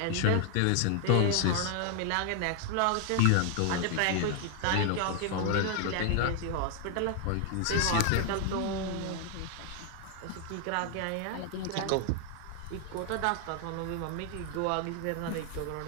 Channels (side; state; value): both; different; correlation 0.00